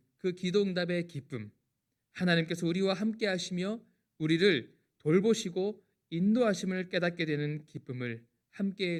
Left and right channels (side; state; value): both; identical; correlation 1.00